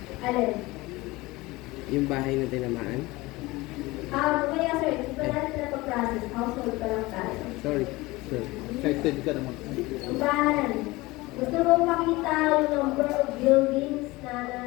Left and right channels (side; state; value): right; quieter; 21.1 dB